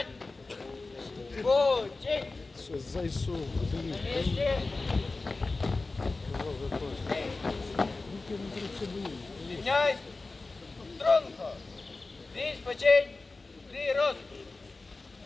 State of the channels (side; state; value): right; quieter; 3.5 dB